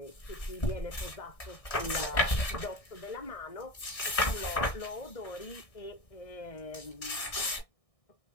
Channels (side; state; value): right; late; 1.6 ms